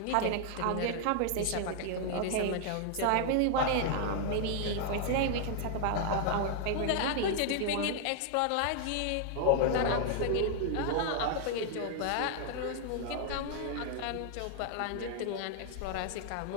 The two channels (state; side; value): different; both; correlation 0.00